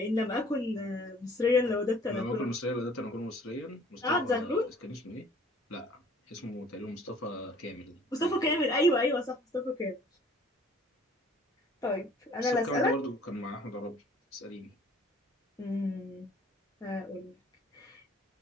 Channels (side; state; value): both; normal; correlation 0.54